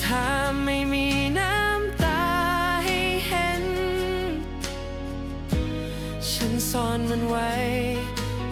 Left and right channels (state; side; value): identical; both; correlation 1.00